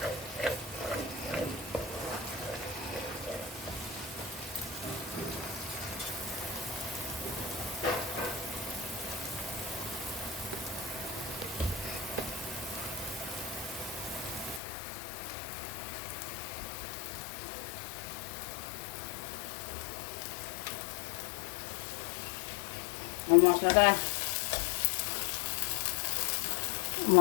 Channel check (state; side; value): drops out; right; at 14.6 s